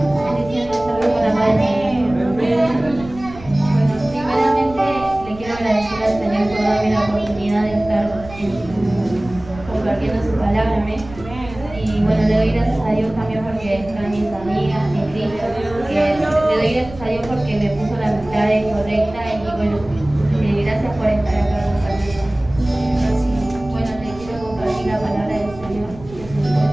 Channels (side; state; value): right; noise; rumble, 17 dB below the sound